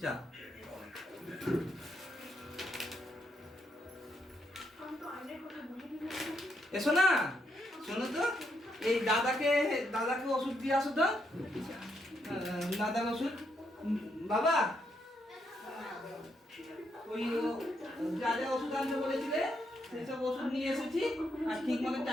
যা। এসো না, শোনো তো, এই দাদাকে ওষুধ দিয়ে আসো তো। দাদার ওষুধ বাবা, ওই যা যা ওষুধ আনতে বলেছিলে সেসব ওষুধ নিয়ে এসেছি। আর ঠিক মতো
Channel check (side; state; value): both; normal; correlation 0.78